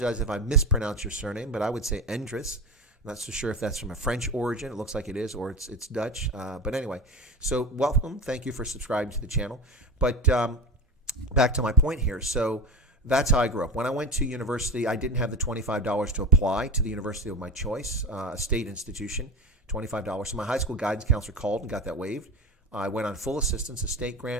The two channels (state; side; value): normal; both; correlation 0.25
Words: if I mispronounce your surname, but I would say Endres. I'm not so sure if that's from a French origin. It looks like it is, or it's Dutch. But anyway, so welcome. Thank you for subscribing to the channel. But back to my point here. So that's how I grew up. When I went to university, I didn't have the $25 to apply to the university of my choice, a state institution, $25. So my high school guidance counselor called and got that waived. I went on full assistance, a state